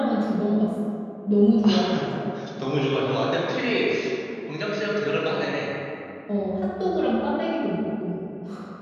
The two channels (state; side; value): identical; both; correlation 1.00